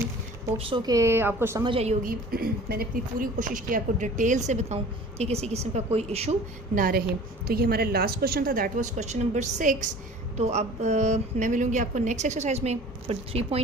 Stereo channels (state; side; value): normal; both; correlation 0.45